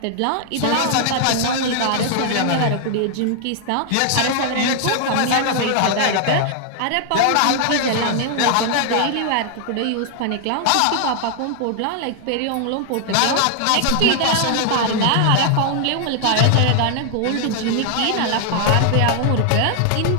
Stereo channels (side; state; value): both; different; correlation 0.00